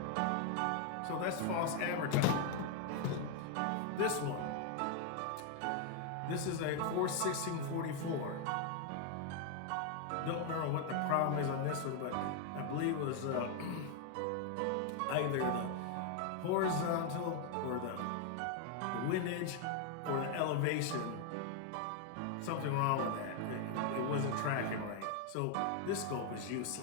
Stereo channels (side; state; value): both; different; correlation 0.00